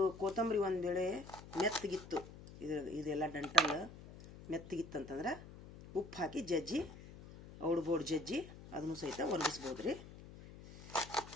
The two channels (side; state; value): left; noise; hum, 16 dB below the sound